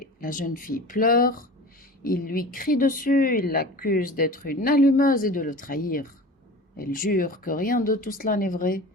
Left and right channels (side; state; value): both; normal; correlation 0.36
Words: La jeune fille pleure. Il lui crie dessus, il l'accuse d'être une allumeuse et de le trahir. Elle jure que rien de tout cela n'est vrai